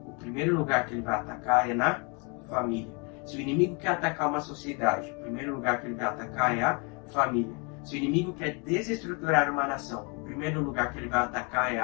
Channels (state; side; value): quieter; right; 33.0 dB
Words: o primeiro lugar que ele vai atacar é na família. Se o inimigo quer atacar uma sociedade, o primeiro lugar que ele vai atacar é a família. Se o inimigo quer desestruturar uma nação, o primeiro lugar que ele vai atacar é